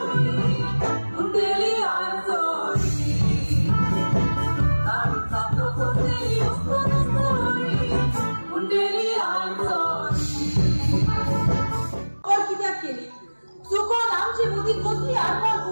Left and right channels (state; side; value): inverted; both; correlation -1.00